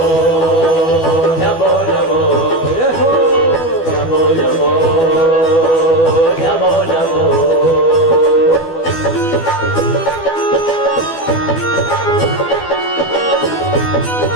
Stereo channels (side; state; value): right; late; 12 ms